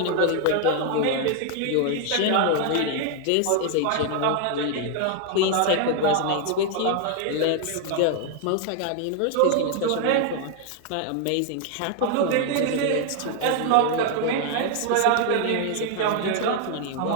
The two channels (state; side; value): different; both; correlation 0.00